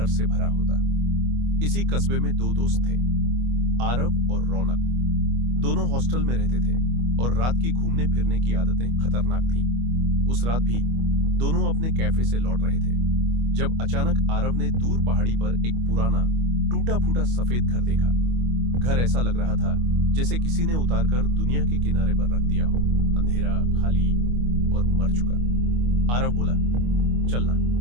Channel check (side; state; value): left; late; 25 ms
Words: से भरा होता। इसी कस्बे में दो दोस्त थे, आरव और रौनक। दोनों हॉस्टल में रहते थे और रात की घूमने फिरने की आदतें खतरनाक थीं। उस रात भी दोनों अपने कैफे से लौट रहे थे जब अचानक आरव ने दूर पहाड़ी पर एक पुराना टूटा फूटा सफेद घर देखा। घर ऐसा लग रहा था जैसे किसी ने उतारकर दुनिया के किनारे पर रख दिया हो, अंधेरा, खाली और मर चुका। आरव बोला, चलना,